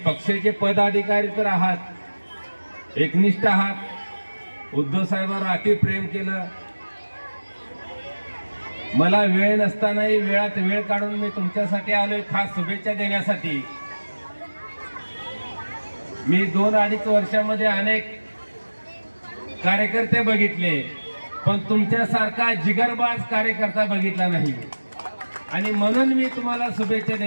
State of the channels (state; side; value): inverted; both; correlation -1.00